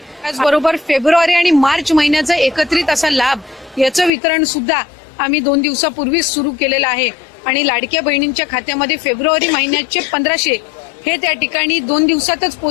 फेब्रुवारी आणि मार्च महिन्याचा एकत्रित असा लाभ याचं वितरण सुद्धा आम्ही 2 दिवसापूर्वीच सुरू केलेलं आहे आणि लाडक्या बहिणींच्या खात्यामध्ये फेब्रुवारी महिन्याचे 1500 हे त्या ठिकाणी 2 दिवसातच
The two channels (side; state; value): right; drops out; at 4.1 s